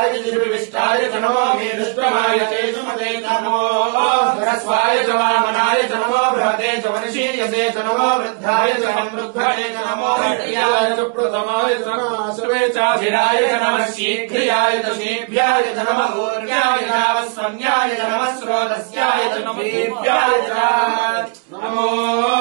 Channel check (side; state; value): left; quieter; 36.3 dB